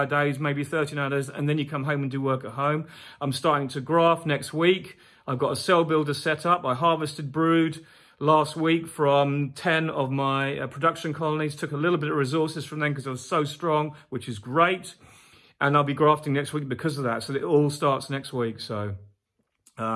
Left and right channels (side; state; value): both; identical; correlation 1.00